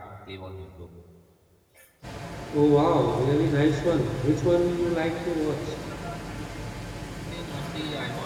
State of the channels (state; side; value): identical; both; correlation 1.00